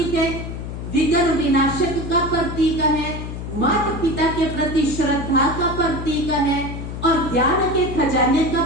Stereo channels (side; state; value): left; noise; hum, 7 dB below the sound